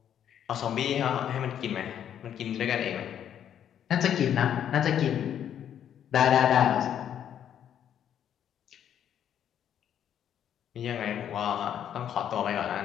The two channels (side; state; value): right; quieter; 9.6 dB